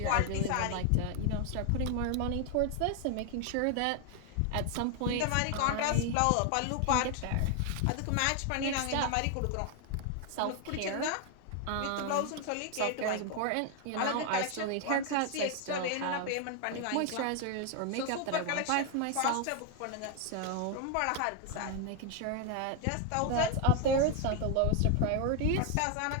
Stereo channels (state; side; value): different; both; correlation 0.01